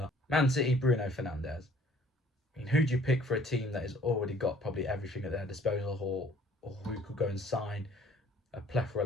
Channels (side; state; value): both; normal; correlation 0.56